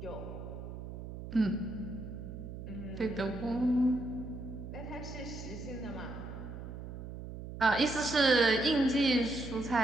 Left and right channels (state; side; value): noise; right; hum, 10 dB below the sound